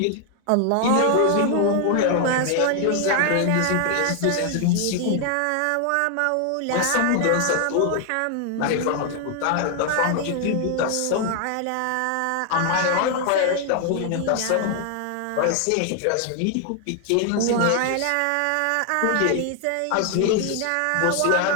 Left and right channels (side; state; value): both; different; correlation 0.00